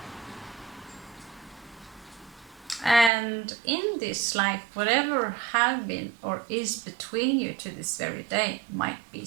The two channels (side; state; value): left; drops out; at 3.1 s